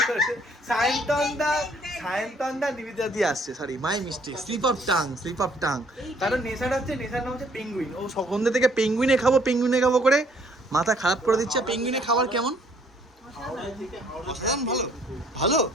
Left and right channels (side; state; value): both; normal; correlation 0.62